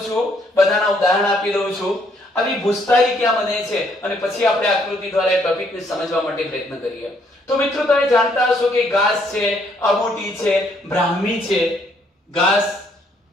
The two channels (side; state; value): both; normal; correlation 0.68